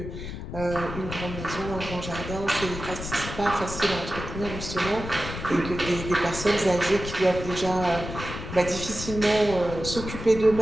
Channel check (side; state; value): left; noise; rumble, 8 dB below the sound